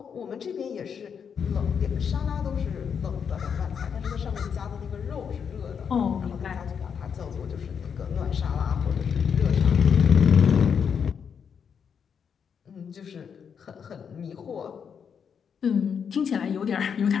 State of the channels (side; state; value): right; quieter; 7.1 dB